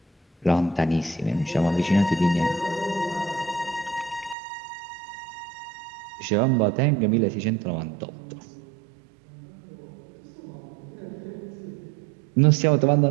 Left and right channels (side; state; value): left; drops out; at 4.4 s